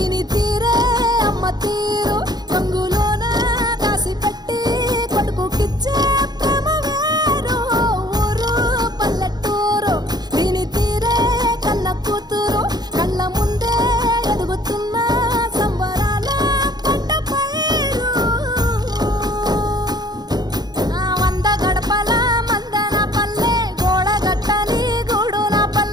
తీరే అమ్మ తీరు కంగులోన దాసి పెట్టి కొడుకుకిచ్చే ప్రేమ వేరు ఊరు పల్లెటూరు దీని తీరే కన్న కూతురు కళ్ళ ముందే ఎదుగుతున్న సంబరాల పంట పైరు వంద గడపల మందన పల్లె గోడ గట్టని గూడున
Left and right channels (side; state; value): left; late; 0.20 ms